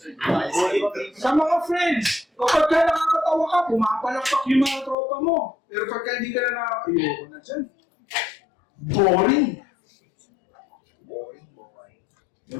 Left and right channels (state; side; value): drops out; right; at 5.0 s